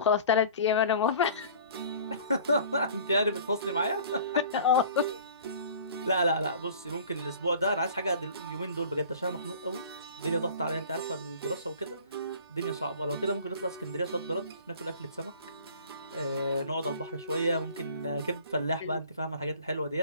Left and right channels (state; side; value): inverted; both; correlation -0.46